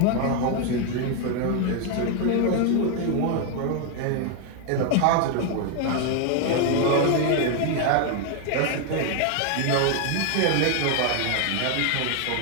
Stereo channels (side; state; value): both; different; correlation 0.01